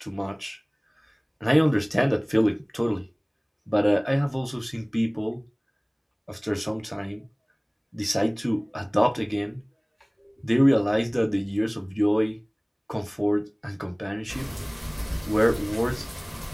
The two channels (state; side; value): identical; both; correlation 1.00